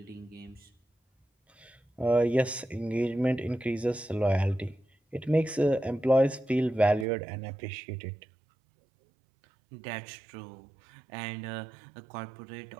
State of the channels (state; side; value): drops out; left; at 7.1 s